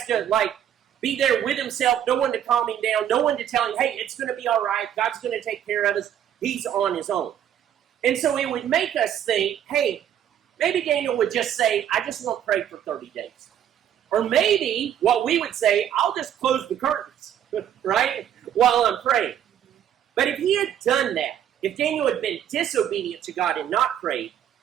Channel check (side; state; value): left; quieter; 10.1 dB